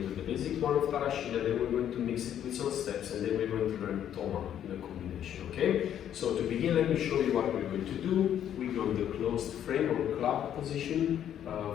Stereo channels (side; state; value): right; quieter; 10.1 dB